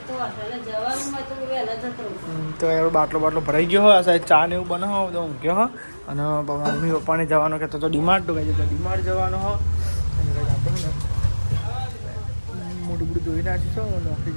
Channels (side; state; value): both; inverted; correlation -1.00